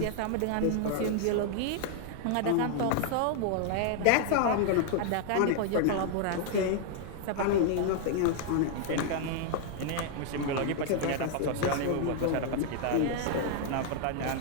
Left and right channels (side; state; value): both; different; correlation 0.00